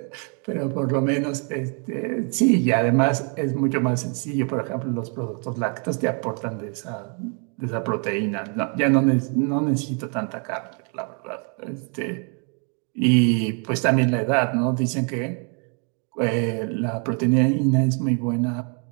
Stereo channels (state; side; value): quieter; left; 38.8 dB